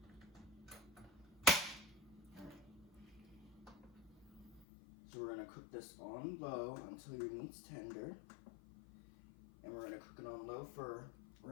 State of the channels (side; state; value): right; drops out; at 4.7 s